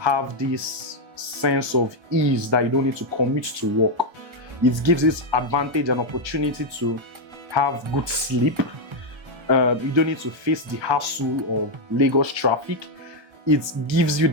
this sense of ease that you don't need to commute to work. It gives this advantage and opportunity to have good sleep. You don't need to face the hassle of Lagos traffic. It gives you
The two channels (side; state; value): left; late; 1.3 ms